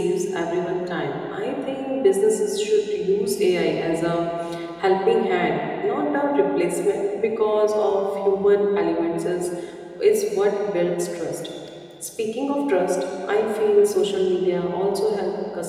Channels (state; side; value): identical; both; correlation 1.00